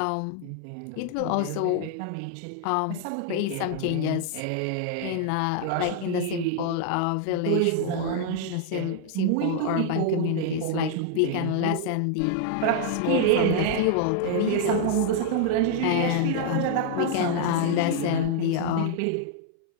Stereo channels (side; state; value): both; different; correlation 0.00